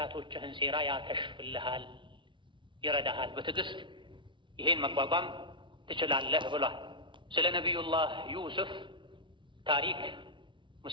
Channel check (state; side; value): late; left; 0.24 ms